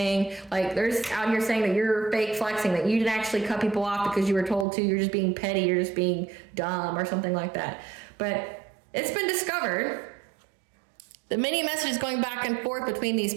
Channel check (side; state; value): left; drops out; at 4.7 s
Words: Like, there's out here saying that you're fake flexing, that you didn't actually cut people off because you were told to, you're just being petty, you're just being dumb or something like that. But it's been discovered, the many messages going back and forth between these